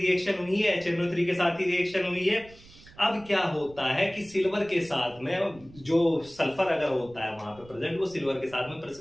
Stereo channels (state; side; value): noise; right; rumble, 22 dB below the sound